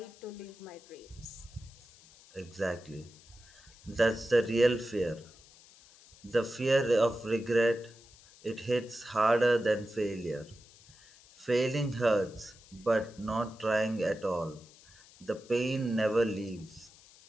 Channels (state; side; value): noise; left; hiss, 24 dB below the sound